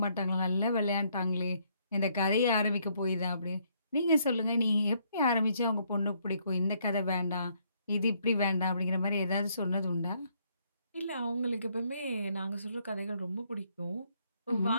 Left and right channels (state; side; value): inverted; both; correlation -0.70